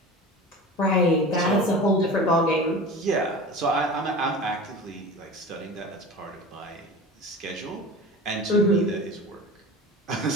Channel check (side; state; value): both; normal; correlation 0.35